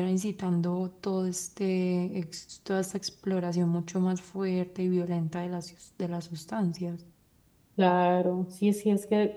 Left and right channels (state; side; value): identical; both; correlation 1.00